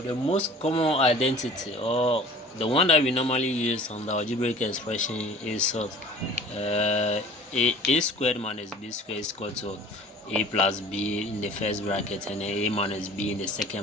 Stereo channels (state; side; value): normal; both; correlation 0.45